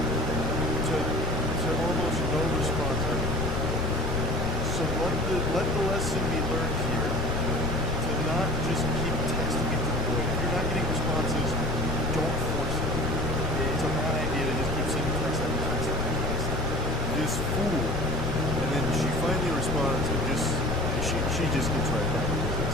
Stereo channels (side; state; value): left; noise; rumble, 4 dB below the sound